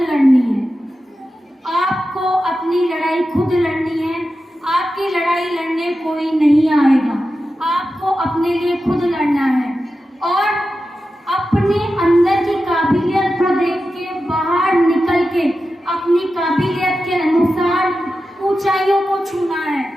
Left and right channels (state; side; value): normal; both; correlation 0.92